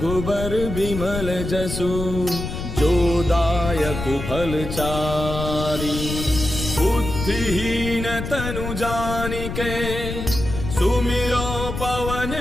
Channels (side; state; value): left; noise; rumble, 6 dB below the sound